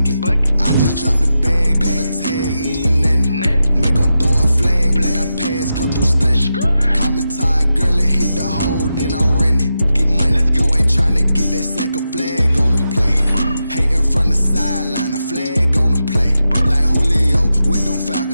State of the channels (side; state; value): both; inverted; correlation -0.89